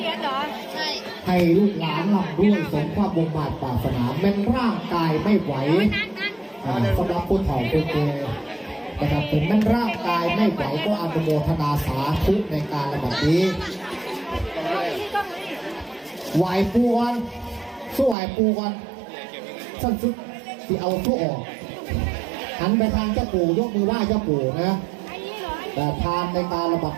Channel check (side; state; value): left; drops out; at 18.2 s